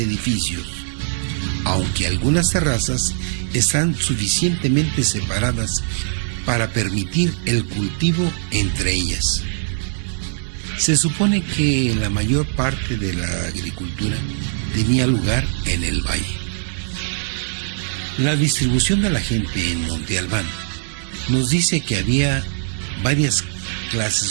edificios, aunque algunas terrazas están suficientemente separadas para permitir el cultivo entre ellas. Se supone que la mayor parte de la agricultura tenía lugar en el valle. La distribución de la gente en Monte Albán nos dice que había varias clases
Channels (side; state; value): left; silent; digital silence